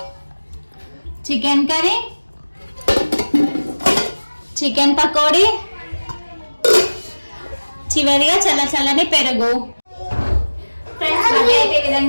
chicken curry, chicken pakodi, చివరిగా చల్లని పెరుగు. ఫ్రెండ్స్ బర్త్డే అయితే ఈ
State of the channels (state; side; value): inverted; both; correlation -1.00